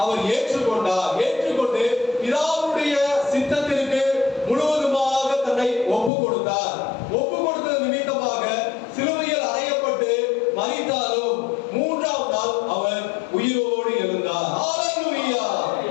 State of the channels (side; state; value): right; drops out; at 6.1 s